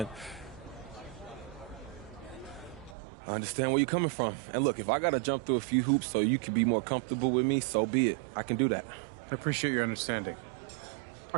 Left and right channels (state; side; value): drops out; left; at 3.0 s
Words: I understand where you're coming from. And look, if I got to jump through a few hoops so you can be more comfortable with me, so be it. I can do that. I appreciate your understanding. I